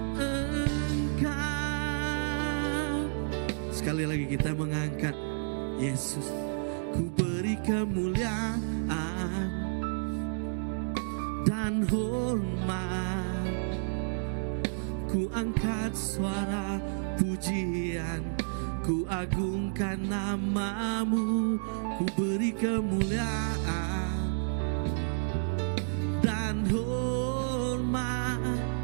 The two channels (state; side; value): silent; left; digital silence